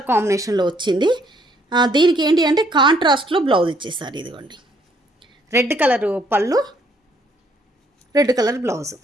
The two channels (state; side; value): normal; both; correlation 0.67